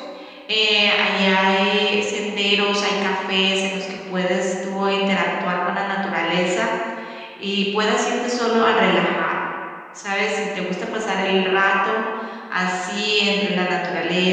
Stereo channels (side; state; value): both; identical; correlation 1.00